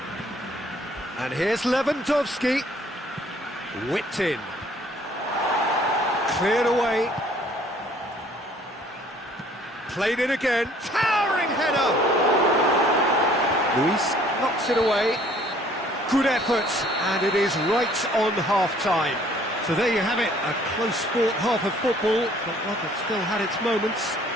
And here's Lewandowski. Whipped in. Cleared away. Played it again. Towering header. Luis knocks it away. Good effort, and it is right on half-time. So there you have it, a close-fought half of football, but one that still had its moments,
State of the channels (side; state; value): both; normal; correlation 0.58